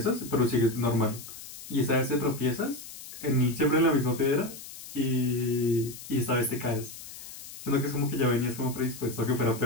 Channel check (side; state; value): left; noise; hiss, 13 dB below the sound